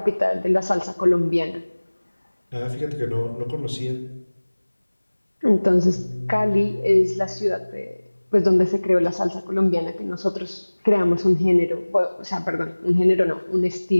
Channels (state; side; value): inverted; both; correlation -1.00